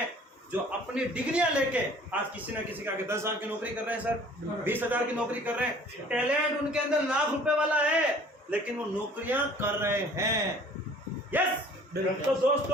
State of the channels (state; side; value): normal; both; correlation 0.51